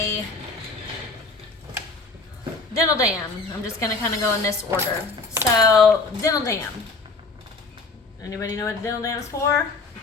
dental dam. I'm just gonna kind of go in this order. So dental dam. Anybody know what a dental dam is for?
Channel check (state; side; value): quieter; right; 3.9 dB